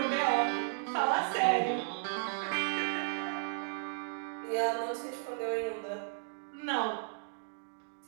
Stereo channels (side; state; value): left; silent; digital silence